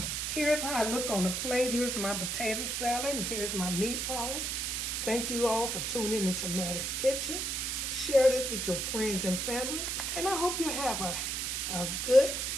Here's how I look on the plate. Here's my potato salad. And here's my meatballs. Thank you all for tuning into Mattie's Kitchen. Share this with your friends and family. And I hope you have a good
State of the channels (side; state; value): right; noise; hiss, 1 dB below the sound